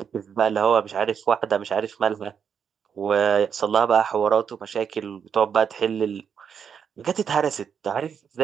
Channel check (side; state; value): left; quieter; 7.3 dB